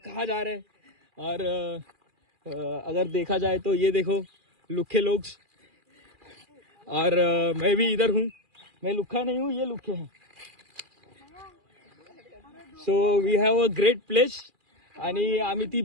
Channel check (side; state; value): left; late; 2.4 ms